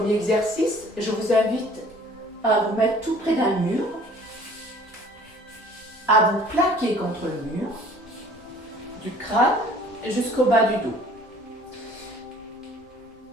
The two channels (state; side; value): normal; both; correlation 0.52